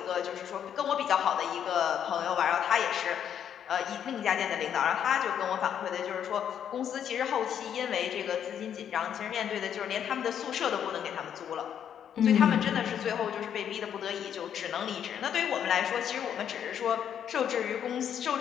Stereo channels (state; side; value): quieter; right; 9.0 dB